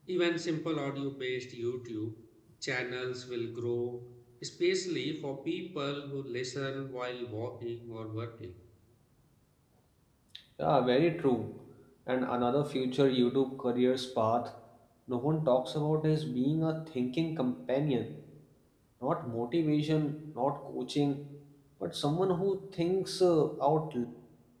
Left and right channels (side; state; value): both; identical; correlation 1.00